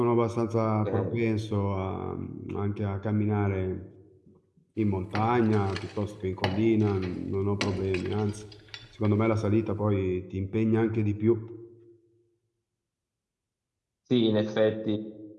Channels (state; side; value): identical; both; correlation 1.00